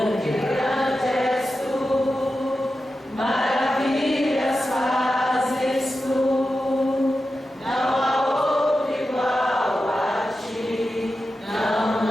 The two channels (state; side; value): normal; both; correlation 0.91